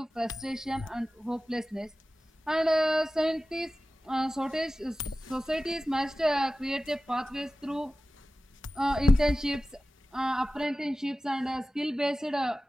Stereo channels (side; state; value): both; normal; correlation 0.95